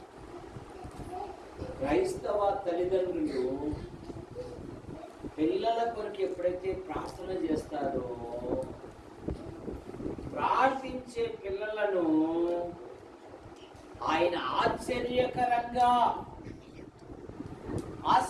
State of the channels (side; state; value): both; identical; correlation 1.00